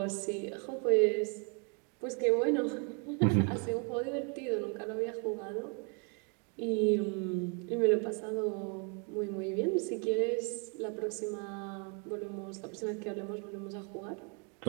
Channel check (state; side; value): quieter; left; 37.1 dB